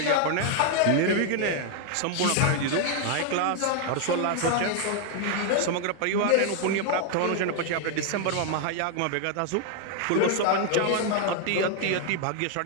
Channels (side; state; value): both; different; correlation 0.00